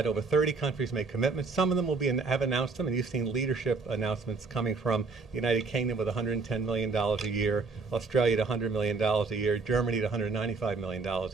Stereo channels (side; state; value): left; quieter; 4.3 dB